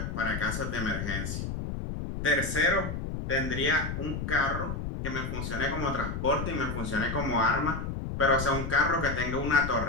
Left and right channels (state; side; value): noise; left; rumble, 4 dB below the sound